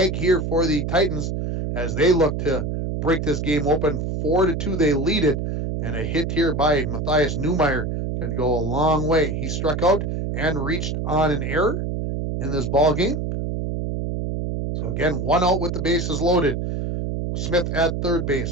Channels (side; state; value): right; noise; hum, 2 dB below the sound